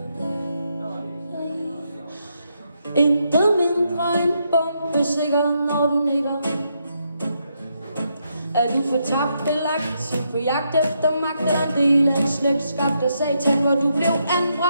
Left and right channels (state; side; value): inverted; both; correlation -0.79